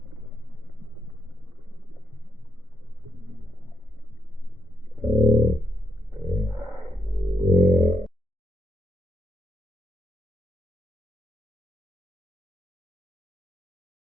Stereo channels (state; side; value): normal; both; correlation 0.78